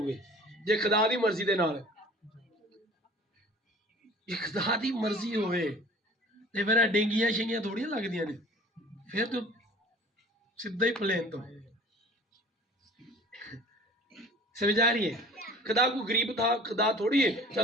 जे खुदा दी मर्जी दे नाल। ये खुदा दी मर्जी होवे ते फिर डेंगियां शेंगियां थोड़ियां लगदियां ने, फिर तो सीधा ही प्लेन तो। समझ आ रही है? खुदा को गरीब था, खुदा थोड़ी है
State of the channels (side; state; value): both; normal; correlation 0.45